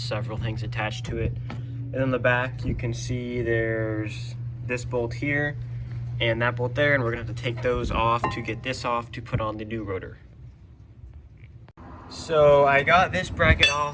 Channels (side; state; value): both; identical; correlation 1.00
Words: things attached to it. And on the back, you can see there's this bolt here and that bolt there, and we're gonna have to take those off to get this off to put on the new rotor. So I got this bracket